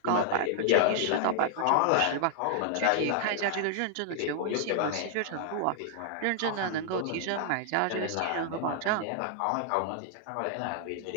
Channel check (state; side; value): different; both; correlation 0.00